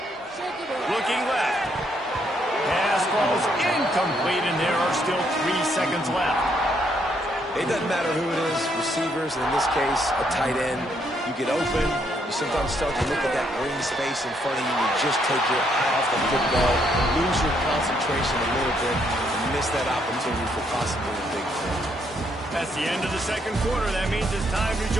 Looking left. Pass falls incomplete, and there are still 3 seconds left. It doesn't matter who it is, receivers, and in this case, a tight end. You get open, you sometimes start to look at that green space in front of you, and you just take your eye off the football, lose your concentration a little bit, and miss that opportunity for possibly a big play. That's the end of the second quarter. That means it's time to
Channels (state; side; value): normal; both; correlation 0.73